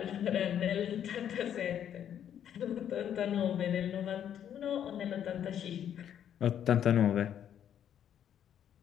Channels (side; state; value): right; quieter; 9.6 dB